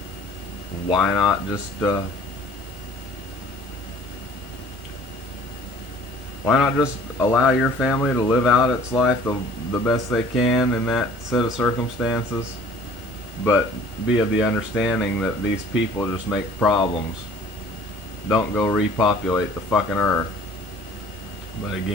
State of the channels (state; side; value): normal; both; correlation 0.50